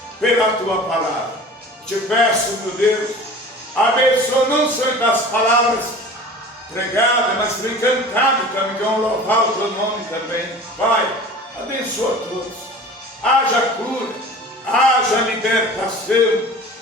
pela Tua palavra. Te peço, meu Deus, abençoa não só das palavras pregadas, mas também cantadas também, que vão louvar o Teu nome também. Pai, abençoa todos. Haja cura, haja libertação,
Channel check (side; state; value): both; normal; correlation 0.40